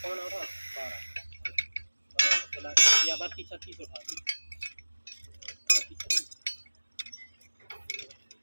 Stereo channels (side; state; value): both; inverted; correlation -1.00